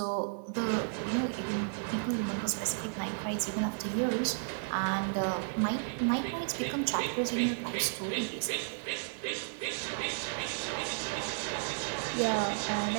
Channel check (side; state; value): left; silent; digital silence